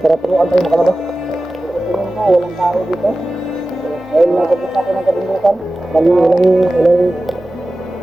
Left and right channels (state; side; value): normal; both; correlation 0.95